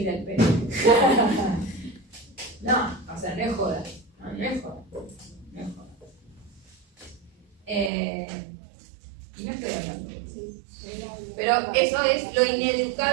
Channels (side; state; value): left; drops out; at 7.9 s